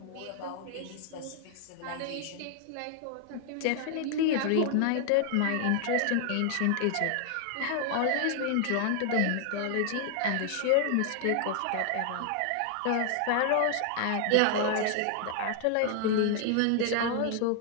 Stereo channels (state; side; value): different; both; correlation 0.00